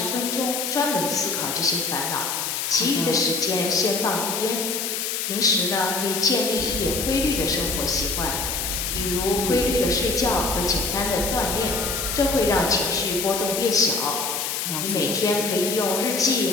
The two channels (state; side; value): noise; left; hiss, 2 dB below the sound